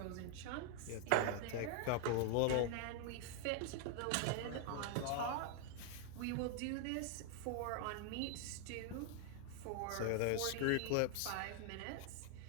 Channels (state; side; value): different; both; correlation 0.00